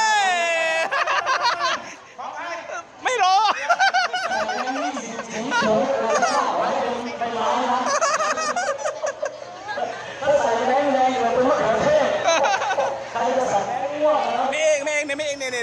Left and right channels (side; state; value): both; identical; correlation 1.00